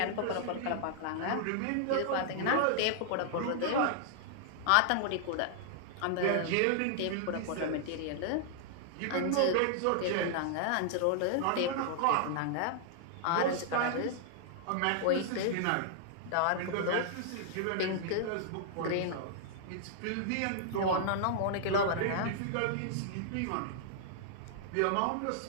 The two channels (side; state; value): both; different; correlation -0.01